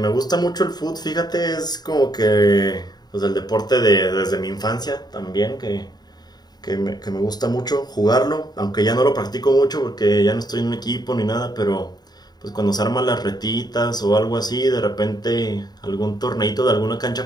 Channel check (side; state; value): right; late; 0.20 ms